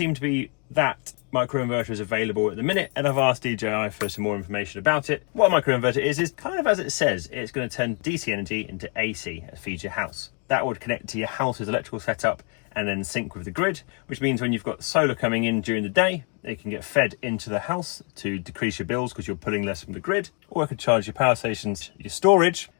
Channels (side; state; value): right; quieter; 35.2 dB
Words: to be that microinverter is available at the minute, and I've asked DJI for some more information about it. What a microinverter is kind of as it says. It's going to turn DC energy into AC and feed your house. That would connect to your house's electrical setup and then sync with the grid, which means when you've got solar coming in during the day, it can get fed into the house to decrease your bills because you're pulling less from the grid, or it could charge your power stations, your storage,